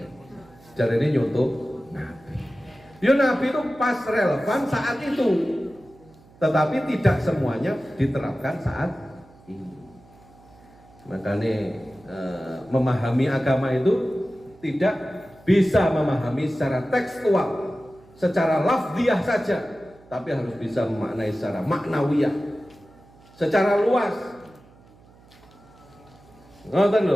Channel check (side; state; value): right; noise; hum, 26 dB below the sound